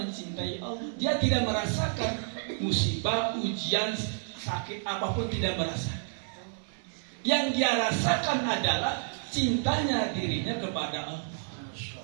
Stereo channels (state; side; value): silent; left; digital silence